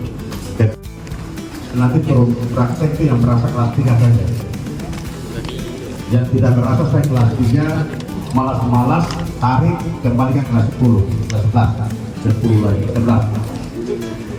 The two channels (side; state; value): both; identical; correlation 1.00